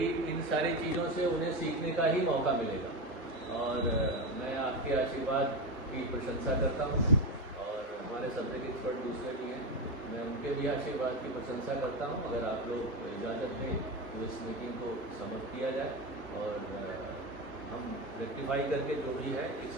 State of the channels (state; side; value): normal; both; correlation 0.16